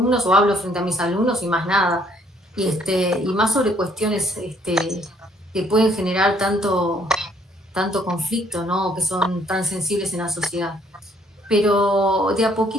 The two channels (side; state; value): both; normal; correlation 0.65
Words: o hablo frente a mis alumnos y más nada. Y más sobre cuestiones que pueden generar tanto conflicto, ¿no? Que son tan sensibles en la sociedad. Pero de a